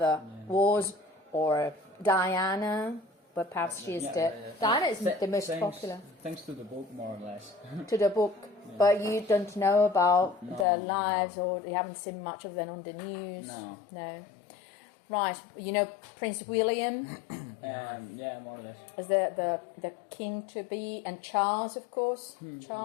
was, or Diana. But perhaps she is Diana is the most popular. Thanks to the book, more or less. To the book, but you don't know about their lives, or you haven't seen much of them on the news. No. Right, you know Prince William. Yeah, more or less. Was the king to be, and Charles, of course,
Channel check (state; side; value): drops out; right; at 10.7 s